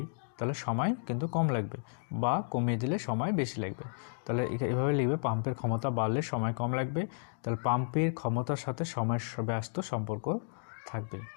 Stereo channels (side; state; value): right; silent; digital silence